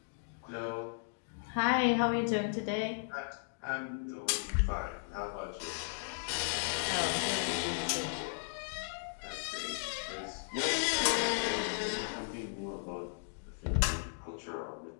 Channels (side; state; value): right; silent; digital silence